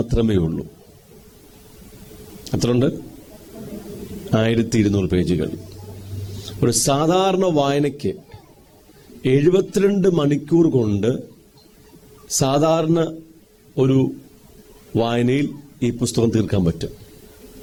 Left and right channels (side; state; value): both; identical; correlation 1.00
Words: ഉള്ളൂ. എത്രയുണ്ട്? 1200 പേജുകൾ. ഒരു സാധാരണ വായനയ്ക്ക് 72 മണിക്കൂർ കൊണ്ട് സാധാരണ ഒരു വായനയിൽ ഈ പുസ്തകം തീർക്കാൻ പറ്റും.